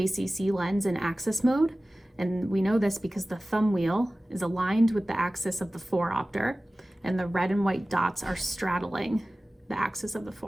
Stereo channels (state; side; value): normal; both; correlation 0.97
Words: lens in axis mode. And we know this because the thumb wheel is aligned with the axis of the 4-opter, and the red and white dots are straddling the axis of the